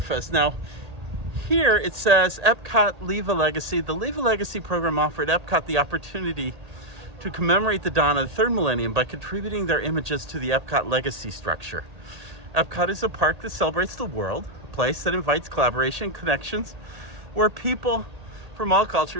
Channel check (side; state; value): left; late; 1.8 ms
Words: Now, here it says Epcot Leave a Legacy. The Leave a Legacy program offered Epcot the opportunity to commemorate the dawn of the third millennium by contributing their images to the Epcot legacy structure. Epcot is a park that celebrates the world, a place that invites collaboration, connections, where people from all